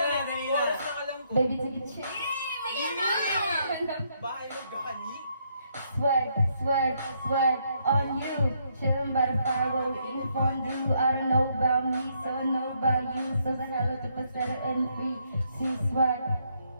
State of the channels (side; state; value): both; inverted; correlation -0.73